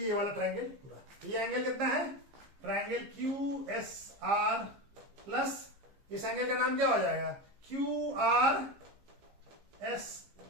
ये वाला ट्रायंगल पूरा, तो ये एंगल कितना है, triangle Q S R plus इस एंगल का नाम क्या हो जाएगा क्यू आर एस,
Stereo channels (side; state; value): left; late; 15 ms